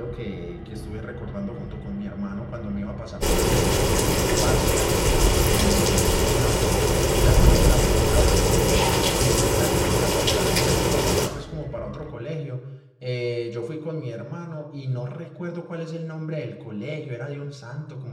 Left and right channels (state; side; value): identical; both; correlation 1.00